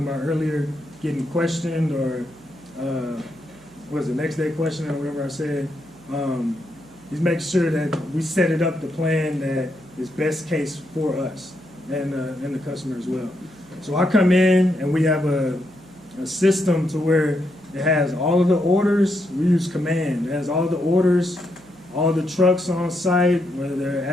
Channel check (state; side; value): noise; right; hum, 29 dB below the sound